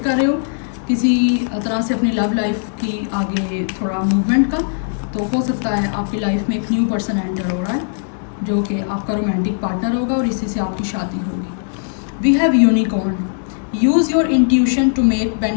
रहे हो किसी तरह से अपनी लव लाइफ की आगे थोड़ा मूवमेंट का, तो हो सकता है आपकी लाइफ में एक न्यू पर्सन एंटर हो रहा है जो कि आपका रोमांटिक पार्टनर होगा, और इसी से आपकी शादी होगी। We have unicorn, use your intuition to make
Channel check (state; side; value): silent; right; 62 dB below the other